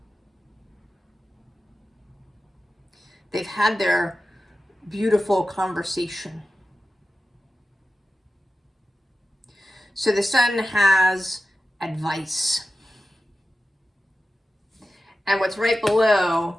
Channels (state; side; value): normal; both; correlation 0.94